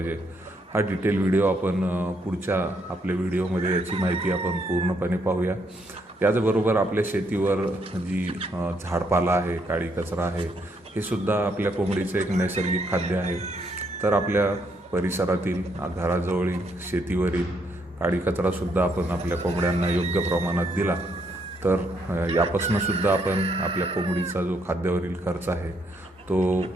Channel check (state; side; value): normal; both; correlation 0.74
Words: हा डिटेल व्हिडिओ आपण पुढच्या आपल्या व्हिडिओमध्ये याची माहिती आपण पूर्णपणे पाहूया. त्याचबरोबर आपल्या शेतीवर जी झाडपाला आहे, काळी कचरा आहे, हे सुद्धा आपल्या कोंबडीचं एक नैसर्गिक खाद्य आहे. तर आपल्या परिसरातील घराजवळील शेतीवरील काळी कचरासुद्धा आपण आपल्या कोंबड्यांना योग्य प्रमाणात दिला तर यापासून सुद्धा आपण आपल्या कोंबडीचा जो खाद्यावरील खर्च आहे तो